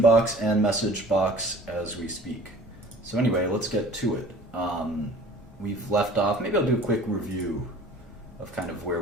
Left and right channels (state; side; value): normal; both; correlation 0.47